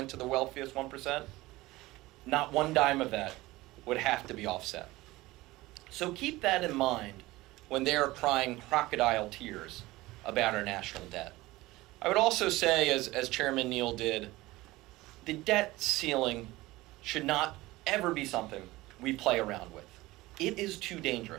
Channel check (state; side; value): quieter; left; 19.2 dB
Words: to the wealthiest 1%, not one dime of that would have to be offset. So keep that in mind when they are crying crocodile tears about our national debt. I would also say, as Chairman Neal did, the debt ceiling should not ever be something we play around with. It is too